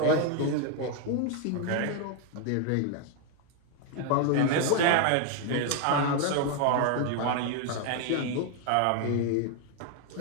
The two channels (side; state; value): both; different; correlation 0.01